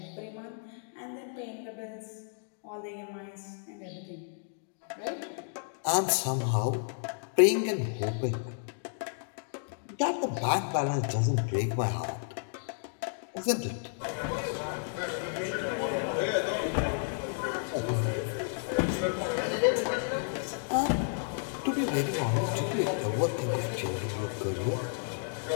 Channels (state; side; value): silent; right; digital silence